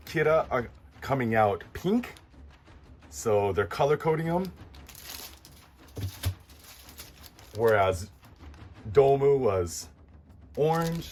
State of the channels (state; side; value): identical; both; correlation 1.00